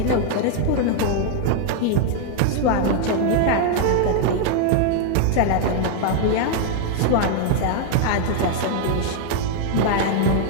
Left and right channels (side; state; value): both; different; correlation 0.00